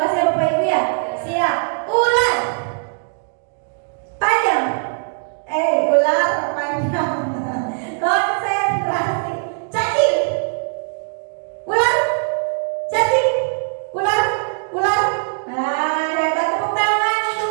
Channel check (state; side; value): silent; left; digital silence